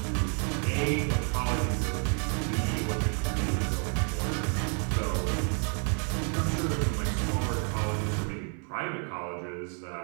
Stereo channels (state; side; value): quieter; left; 39.8 dB